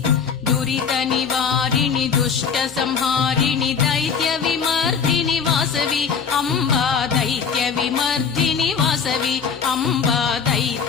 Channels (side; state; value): right; quieter; 6.3 dB